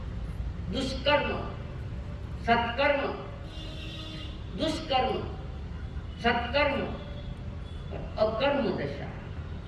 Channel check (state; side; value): identical; both; correlation 1.00